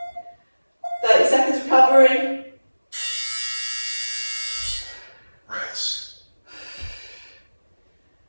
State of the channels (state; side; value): inverted; both; correlation -1.00